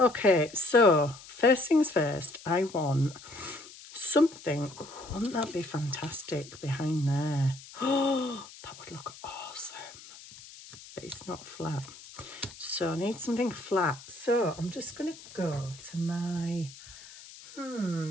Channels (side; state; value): left; noise; hiss, 18 dB below the sound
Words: so first things first, I want something. Oh, wouldn't that be fantastic behind there? Oh, that would look awesome. But it's not flat. So I need something flat. So I'm just going to go to my,